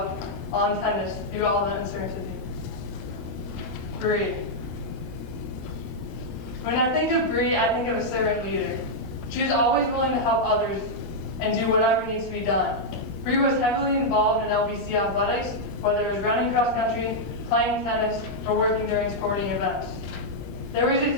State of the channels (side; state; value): right; late; 21 ms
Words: on tennis through all the uncertainty. Bree. When I think of Bree, I think of a servant leader. She is always willing to help others and do whatever needs to be done. Bree was heavily involved in LBC Athletics, whether it was running cross country, playing tennis, or working during sporting events. There was a